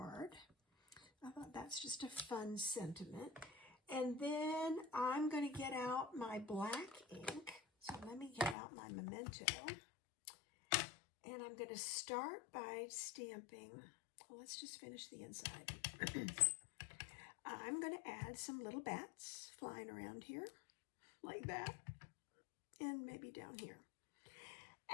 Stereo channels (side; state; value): right; drops out; at 8.6 s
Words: I thought that's just a fun sentiment. And then I'm going to get out my black ink. So let me get out my Memento. And I'm going to start by stamping. Well, let's just finish the inside. I'm going to add some little bats flying around here, like that. And maybe down here.